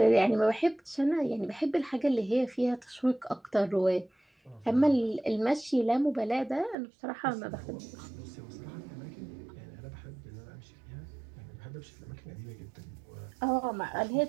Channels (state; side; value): drops out; left; at 6.8 s